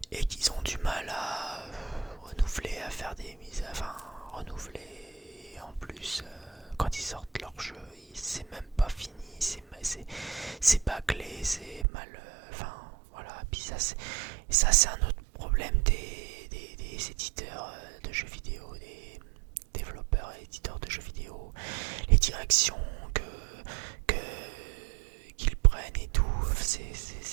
Et qu'ils ont du mal à renouveler, à faire des mises. Enfin, renouveler. En plus, quand ils sortent leur jeu, c'est même pas fini. C'est bâclé, c'est mal. Enfin, voilà. Puis ça, c'est un autre problème des éditeurs de jeux vidéo, des développeurs et éditeurs de jeux vidéo, les directions qu'ils prennent et tout,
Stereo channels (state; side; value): drops out; left; at 11.9 s